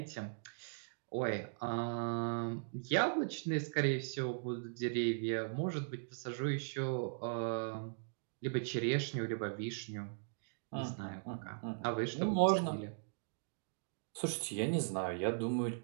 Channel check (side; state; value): left; silent; digital silence